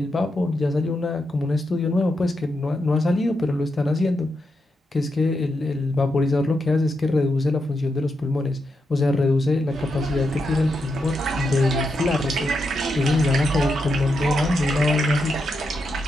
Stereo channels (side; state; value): both; normal; correlation 0.84